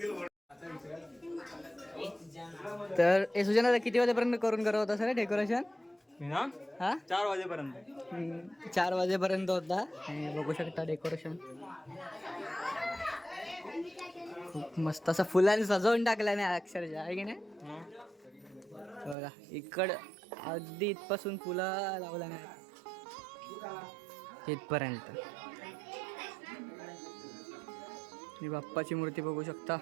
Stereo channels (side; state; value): left; drops out; at 19.2 s